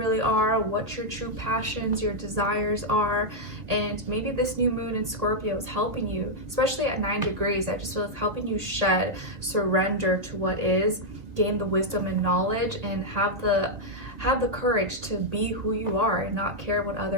are, what your true passions, your desires are. And maybe this new moon in Scorpio is helping you, especially at 9 degrees. I just feel it's helping you surrender to what is, gain the wisdom and knowledge, and have the courage to be who you are and not care what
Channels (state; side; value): late; left; 2.0 ms